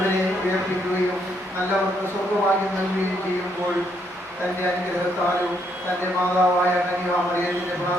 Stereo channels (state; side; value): normal; both; correlation 0.73